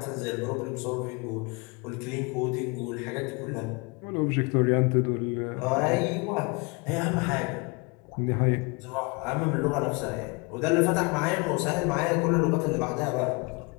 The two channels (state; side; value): quieter; right; 29.4 dB